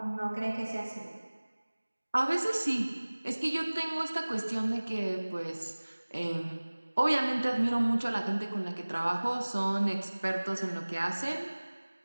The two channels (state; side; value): inverted; both; correlation -1.00